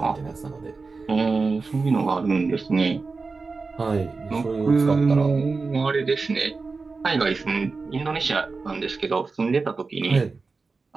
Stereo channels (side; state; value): left; quieter; 4.2 dB